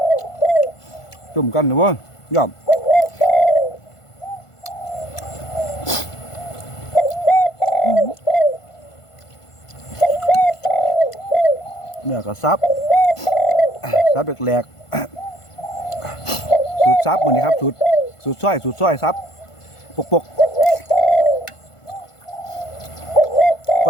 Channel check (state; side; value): late; right; 1.5 ms